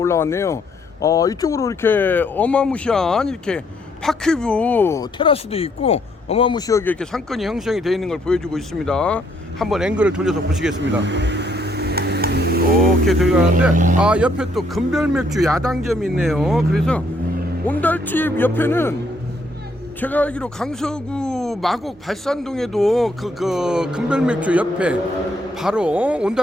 이쪽으로 이렇게 어마무시한 이렇게 파크뷰 테라스도 있고 어마무시하게 이렇게 상권이 형성이 되어 있는 걸 보여주고 있습니다. 한번 앵글을 돌려서 보시겠습니다. 이렇게 들어가는데 옆에 또 금별맥주 야당점이 있네요. 그래서 온달집 옆에는 제가 알기로 강서구 마곡 발산동에도 그 금별맥주 옆에 바로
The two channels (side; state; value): both; normal; correlation 0.69